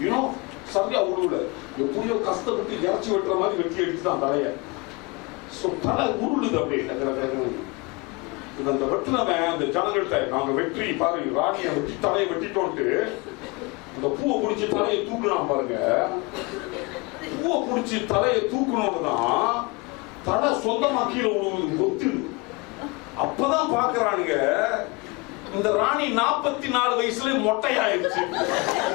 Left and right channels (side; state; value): right; quieter; 27.0 dB